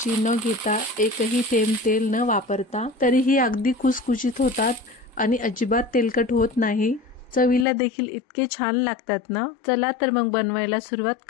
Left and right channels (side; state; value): right; drops out; at 7.7 s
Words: न घेता एकही थेंब तेल न वापरता तरीही अगदी खुसखुशीत होतात आणि अजिबात तेलकट होत नाही। चवीला देखील इतके छान लागतात ना। चला तर मग बनवायला सुरुवात